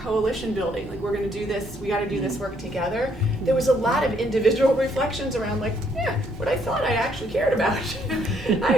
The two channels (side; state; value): both; normal; correlation 0.69